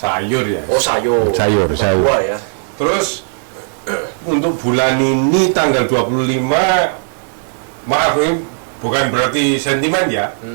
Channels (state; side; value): silent; left; digital silence